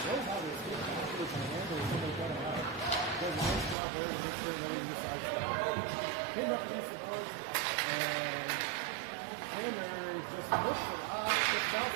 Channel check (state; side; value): drops out; left; at 3.8 s